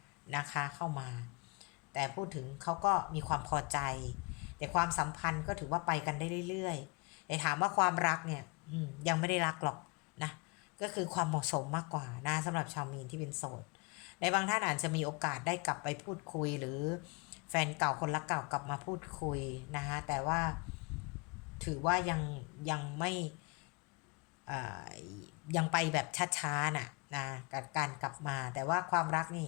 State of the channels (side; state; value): right; quieter; 31.3 dB